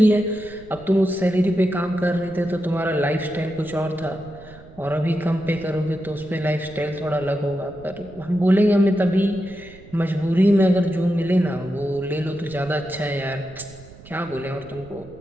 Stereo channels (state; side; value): noise; right; rumble, 20 dB below the sound